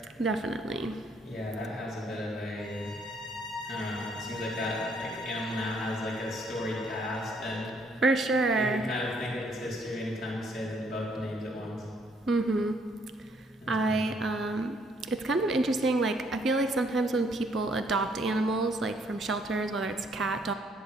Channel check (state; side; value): normal; both; correlation 0.67